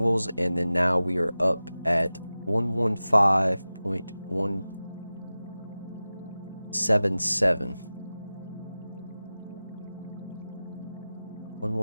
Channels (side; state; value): both; inverted; correlation -0.96